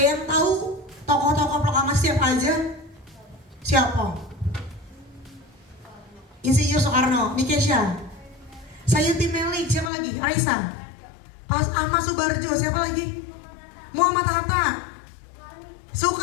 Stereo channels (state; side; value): drops out; right; at 9.9 s